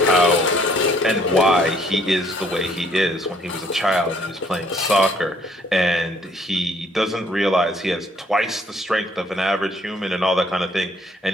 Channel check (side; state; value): both; normal; correlation 0.63